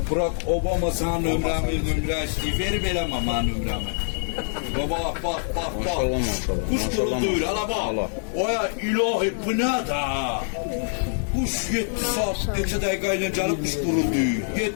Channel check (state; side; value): silent; right; digital silence